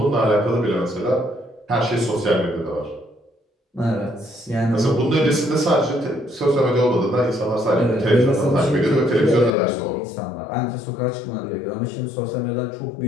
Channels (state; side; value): drops out; right; at 9.5 s